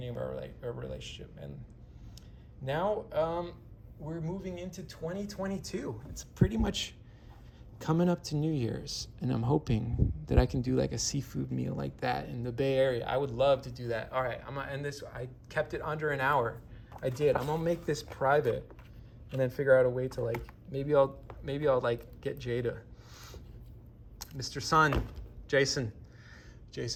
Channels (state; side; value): identical; both; correlation 1.00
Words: of our relationship, and now we're moving into 2022. It's pretty much coming up to New Year's, and I'm hoping that I can do like a seafood meal like that in the Bay Area. I would love to do that. All right, I'm gonna end this. I kept it under an hour. I did. I'm gonna make this private, and then figure out a way to like maybe I'll like get Jada, Mr. Sun, Jason.